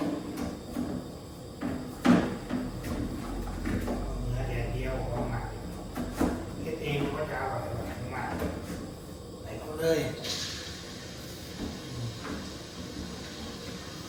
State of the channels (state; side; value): identical; both; correlation 1.00